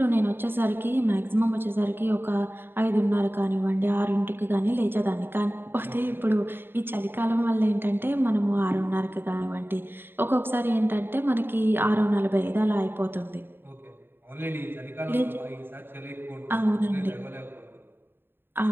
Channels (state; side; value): late; left; 0.10 ms